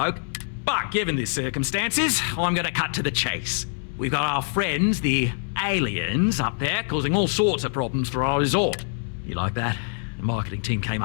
But given the circumstances, I'm going to cut to the chase. We've got our friends, the aliens, up there causing all sorts of problems for our resort. You like that? The marketing team came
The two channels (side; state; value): right; silent; 62 dB below the other